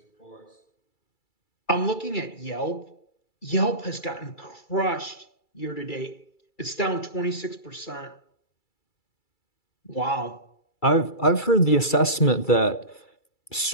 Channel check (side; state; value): right; late; 2.3 ms